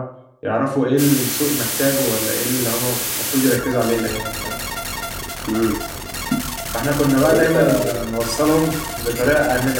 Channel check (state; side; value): identical; both; correlation 1.00